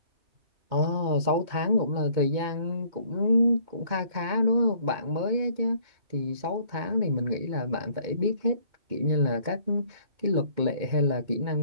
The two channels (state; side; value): late; left; 2.2 ms